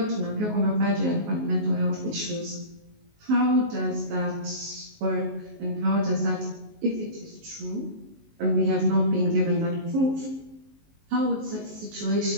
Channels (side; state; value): left; late; 19 ms